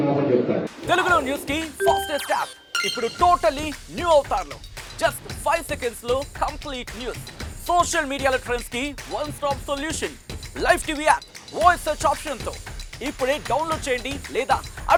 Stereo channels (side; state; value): both; identical; correlation 1.00